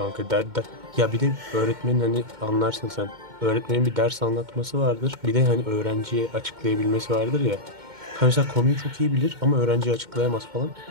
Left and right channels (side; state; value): left; late; 2.1 ms